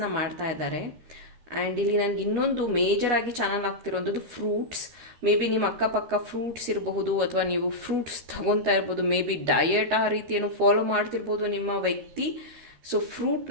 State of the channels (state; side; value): late; left; 13 ms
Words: ಮಾಡ್ತಾ ಇದ್ದಾರೆ. ಆ್ಯಂಡ್ ಇಲ್ಲಿ ನನಗೆ ಇನ್ನೊಂದು ಮೇಜರಾಗಿ ಚಾನಲ್ ಆಗ್ತಿರೋಂಥದ್ದು ಫ್ರೂಟ್ಸ್. ಮೇ ಬಿ ನಿಮ್ಮ ಅಕ್ಕಪಕ್ಕ ಫ್ರೂಟ್ಸ್ ಇರಬಹುದು ಅಥವಾ ನೀವು ಫ್ರೂಟ್ಸ್ ತಗೊತಾ ಇರ್ಬೋದು. ಮೇ ಬಿ ಡಯಟ್ ಆ ರೀತಿಯನ್ನು ಫಾಲೋ ಮಾಡ್ತಿರ್ಬೋದು ನಿಮ್ಮ ವ್ಯಕ್ತಿ. ಸೊ ಫ್ರೂಟ್